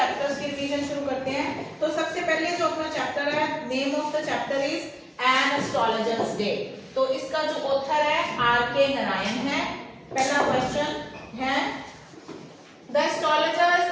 की रिवीजन शुरू करते हैं। तो सबसे पहले जो अपना चैप्टर है, name of the chapter is an astrologers day. तो इसका जो ऑथर है आर.के. नारायण है। पहला क्वेश्चन है, The astrologer's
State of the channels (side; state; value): both; identical; correlation 1.00